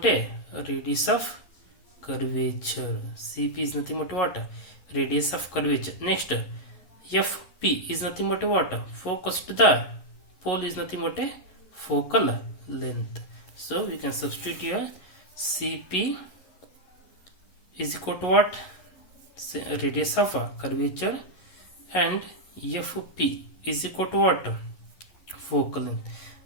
a radius of curvature. Cp is nothing but what? Radius of curvature. Next, Fp is nothing but what? Focus to the pole is nothing but a focal length. So we can substitute here. Cp is equal to what? Radius of curvature, and Fp is equal to what? Focal length.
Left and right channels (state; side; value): late; right; 11 ms